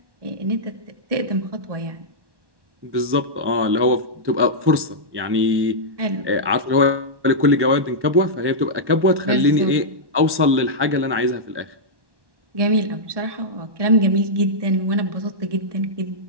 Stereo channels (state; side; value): late; left; 1.1 ms